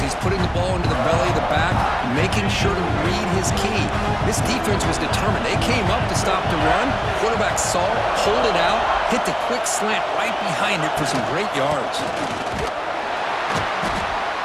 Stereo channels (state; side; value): identical; both; correlation 1.00